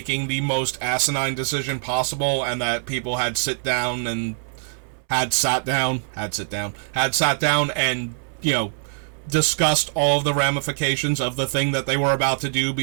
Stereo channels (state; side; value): silent; left; 63 dB below the other